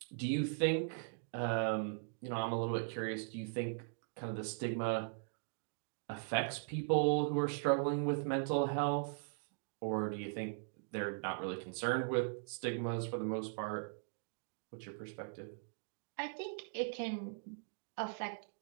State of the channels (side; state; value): left; silent; digital silence